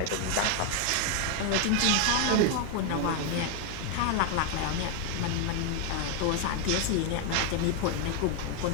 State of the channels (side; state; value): both; different; correlation 0.01